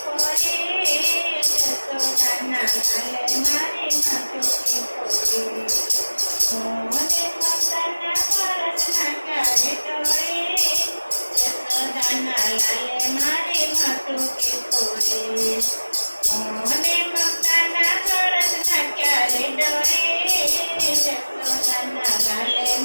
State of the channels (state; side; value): inverted; both; correlation -1.00